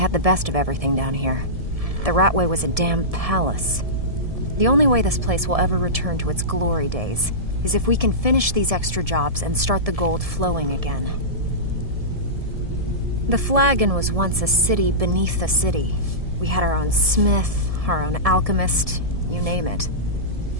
the best of everything down here. The Ratway was a damn palace. The only way this place will ever return to its glory days is if we can finish these extra jobs and start the gold flowing again. The Flagon was once a city beneath a city. We had our own smith, our own alchemist, you name it.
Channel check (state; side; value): late; left; 1.7 ms